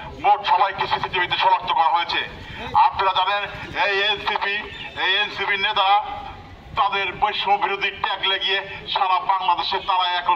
মোট সবাইকে সিসিটিভিতে শনাক্ত করা হয়েছে। আপনারা জানেন এই এনসিপি নেতারা তাদের বৈষম্য বিরোধী ট্যাগ লাগিয়ে সারা বাংলাদেশে তারা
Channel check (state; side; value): identical; both; correlation 1.00